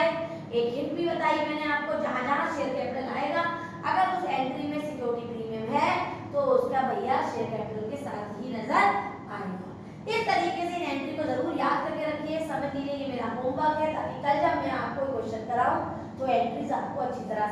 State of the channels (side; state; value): both; identical; correlation 1.00